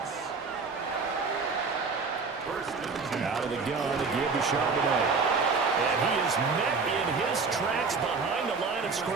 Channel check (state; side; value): quieter; left; 4.6 dB